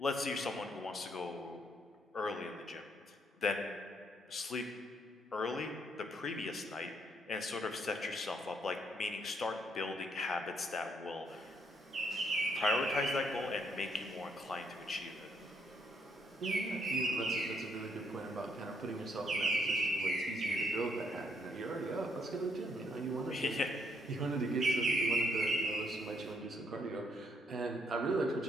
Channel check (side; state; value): both; normal; correlation 0.72